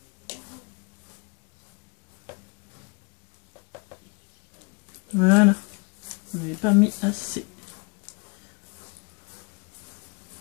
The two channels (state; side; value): quieter; right; 32.1 dB